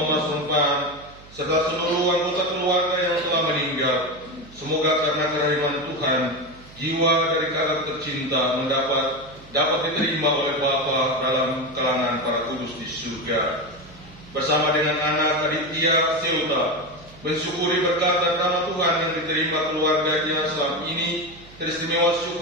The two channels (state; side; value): noise; right; hum, 22 dB below the sound